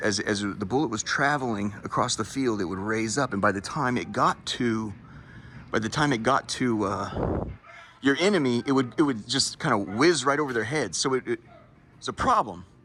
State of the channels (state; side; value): identical; both; correlation 1.00